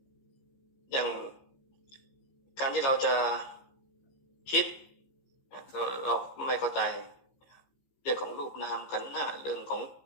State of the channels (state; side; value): late; right; 15 ms